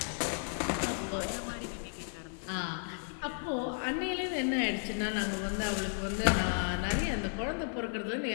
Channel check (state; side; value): silent; right; 55 dB below the other